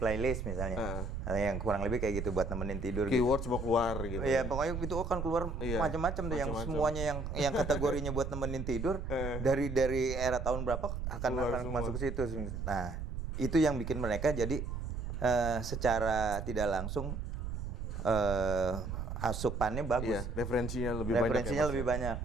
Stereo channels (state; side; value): noise; right; rumble, 4 dB below the sound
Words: playlist misalnya, yang kurang lebih kayak gitu buat nemenin tidur. Keywords mau keluar gitu. Iya, pokoknya itu akan keluar macam-macam tuh yang semuanya yang kategorinya buat nemenin tidur dari era tahun berapa akan masuk ke situ. Nah, itu yang bikin mereka jadi secara tidak langsung asupannya bagus. Iya, referensinya lebih